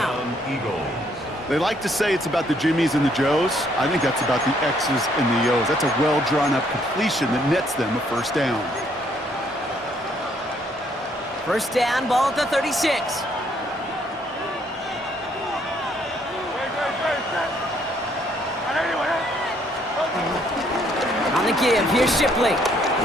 They like to say it's about the Jimmies and the Joes. I think that's about the X's and the O's. That's a well-drawn-up completion that nets them a 1st down. 1st down, ball at the 36. On the give, here's Shipley.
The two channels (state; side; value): normal; both; correlation 0.68